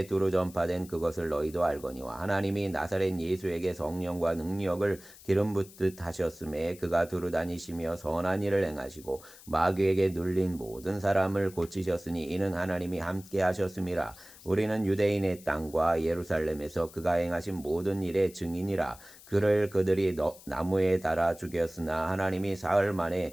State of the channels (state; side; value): noise; left; hiss, 20 dB below the sound